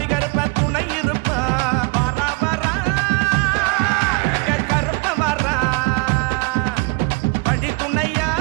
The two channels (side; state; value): left; quieter; 29.8 dB